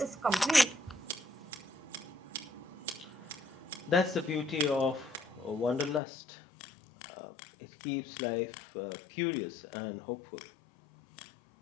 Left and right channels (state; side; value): drops out; right; at 6.0 s